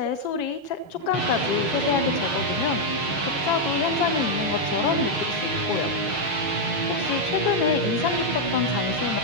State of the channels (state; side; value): late; right; 6.5 ms